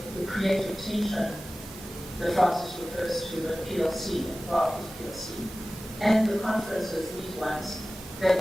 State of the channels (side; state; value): both; normal; correlation 0.96